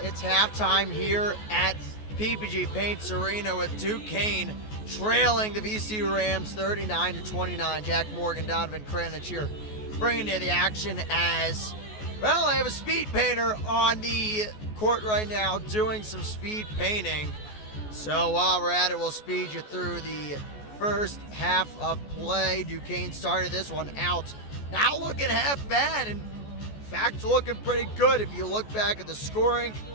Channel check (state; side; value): late; right; 14 ms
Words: It's halftime here at PPG Paints Arena with Duquesne trailing the VCU Rams 39-29. Jack Morgan, Donovan Kranich here bringing you the action as, well, I have a speed painter on the court right now doing some speed painting. So while we're at it, we'll speed you through the first half of play. Duquesne started this one out not looking half bad, and in fact looking pretty good. If you look back at the scoring,